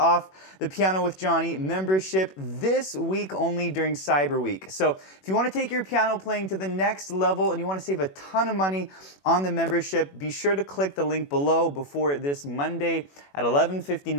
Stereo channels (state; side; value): late; right; 21 ms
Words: the Piano with Jonny membership this week only during Cyber Week. So if you want to take your piano playing to the next level and you want to save a ton of money on the membership, be sure to click the link below before this Monday at